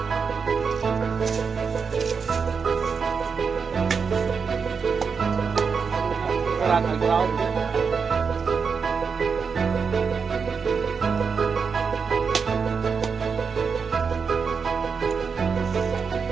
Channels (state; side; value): quieter; left; 5.7 dB